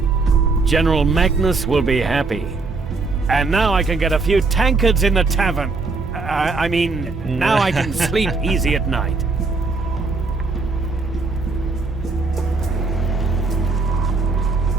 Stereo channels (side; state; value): left; quieter; 3.9 dB